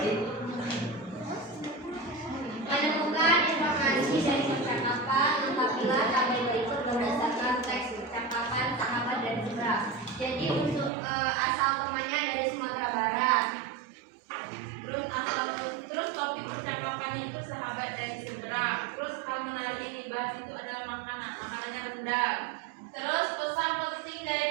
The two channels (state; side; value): drops out; left; at 10.9 s